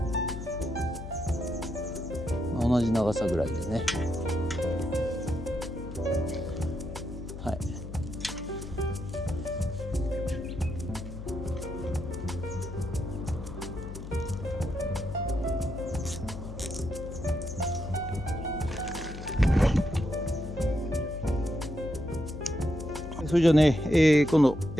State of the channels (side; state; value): left; noise; hum, 10 dB below the sound